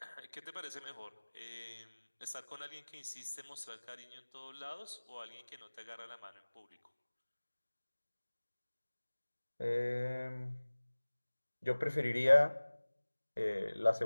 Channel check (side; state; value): both; inverted; correlation -1.00